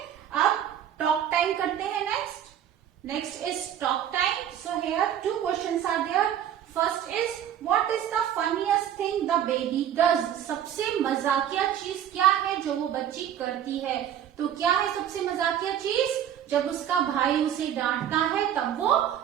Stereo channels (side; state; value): left; quieter; 10.1 dB